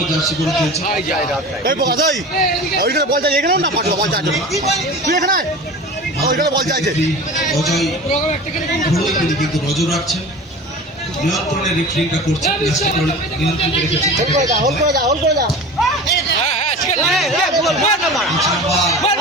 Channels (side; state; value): both; normal; correlation 0.35